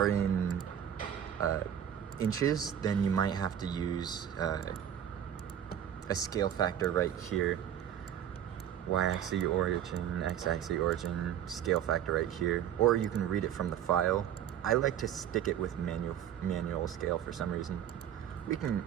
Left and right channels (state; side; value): quieter; left; 9.9 dB